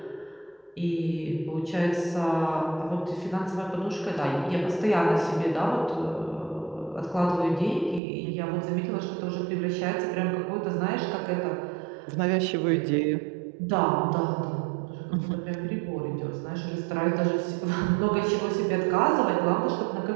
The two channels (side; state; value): left; drops out; at 8.0 s